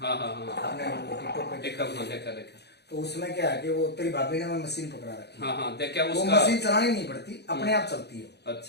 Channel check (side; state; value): right; late; 0.48 ms